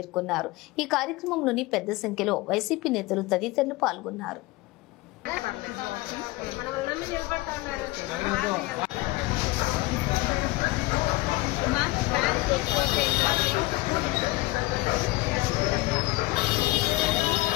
ఈ కార్యక్రమంలోని పెద్ద సంఖ్యలో వైసీపీ నేతలు తదితరులు పాల్గొన్నారు.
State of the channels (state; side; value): quieter; right; 20.3 dB